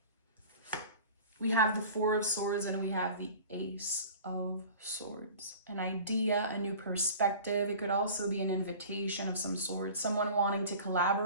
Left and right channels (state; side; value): inverted; both; correlation -0.41